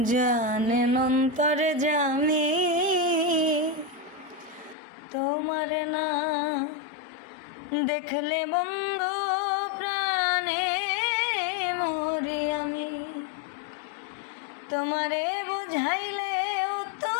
জানেন অন্তরে জামি, তোমার না দেখলে বন্ধু প্রাণে মরি আমি। তোমারে বুঝাইলেও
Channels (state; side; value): drops out; right; at 4.8 s